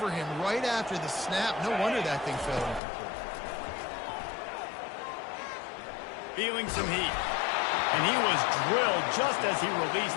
him right after the snap. No wonder that thing fell incomplete. Feeling some heat. And he was drilled just as he released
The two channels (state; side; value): drops out; right; at 2.8 s